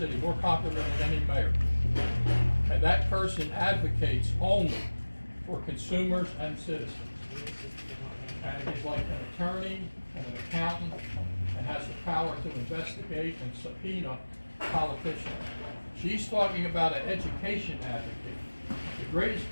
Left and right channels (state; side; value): inverted; both; correlation -1.00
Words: more popular than any mayor. And that person advocates only for consumers and citizens. And he's like an attorney and an accountant and has the power to investigate and subpoena politicians. She's talking about an education advocate. The greatest